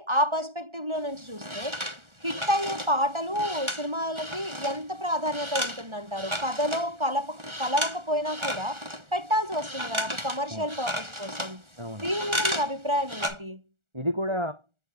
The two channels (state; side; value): late; left; 1.4 ms